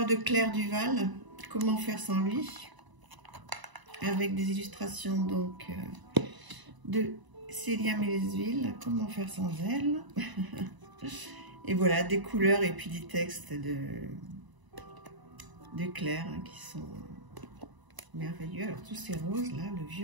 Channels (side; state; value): left; late; 1.0 ms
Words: de Claire Duval, comment faire sans lui? Avec des illustrations donc de Célia Mélesville, comment faire sans elle. Et voilà, des couleurs et puis des textes de Claire hein, qui sont merveilleux. Alors tous ces roses là, le